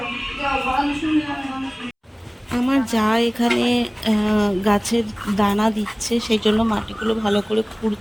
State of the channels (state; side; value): identical; both; correlation 1.00